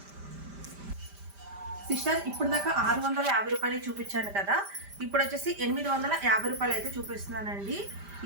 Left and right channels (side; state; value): left; late; 5.0 ms